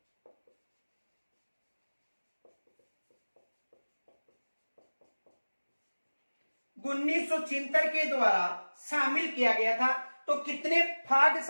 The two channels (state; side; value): inverted; both; correlation -1.00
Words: उन्नीस के द्वारा शामिल किया गया था। तो कितने भाग